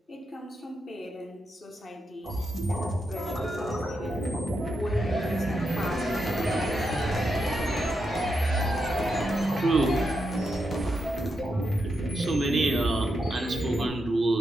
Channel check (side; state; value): both; normal; correlation 0.84